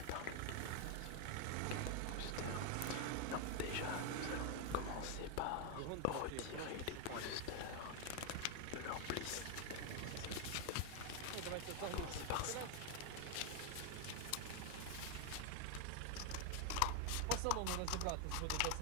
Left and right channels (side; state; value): both; different; correlation 0.01